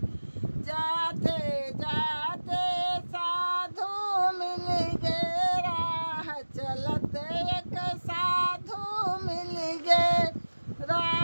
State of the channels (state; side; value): inverted; both; correlation -1.00